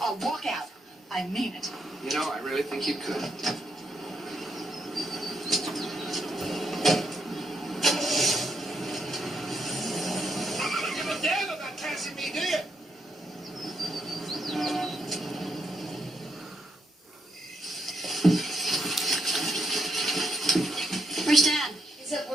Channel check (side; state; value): both; normal; correlation 0.78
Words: I'll walk out. I mean it. You know, I really think you could. Give a damn about Cassie me, do you? Where's Dad? Is that